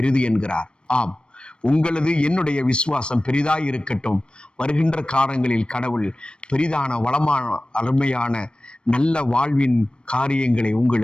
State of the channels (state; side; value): late; right; 0.055 ms